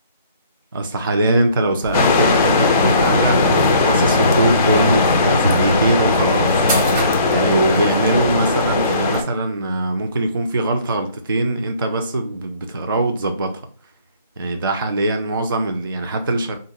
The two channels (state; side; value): inverted; both; correlation -0.56